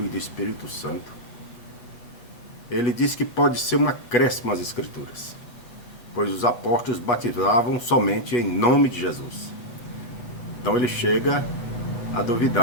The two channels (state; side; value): late; right; 8.4 ms